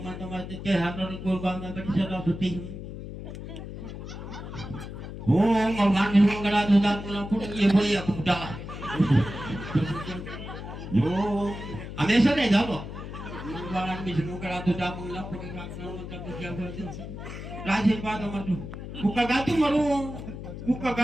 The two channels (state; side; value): noise; left; hum, 9 dB below the sound